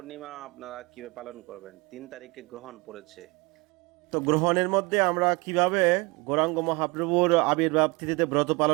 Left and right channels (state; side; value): quieter; left; 26.2 dB